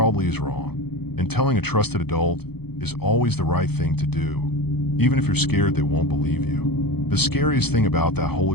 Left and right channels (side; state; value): right; late; 0.97 ms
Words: is wrong. And telling a trusted adult is always the right thing to do, even if you're scared they won't believe you. The scariest thing about that whole